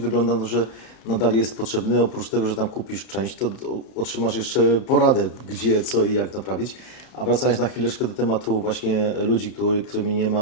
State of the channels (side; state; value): right; late; 32 ms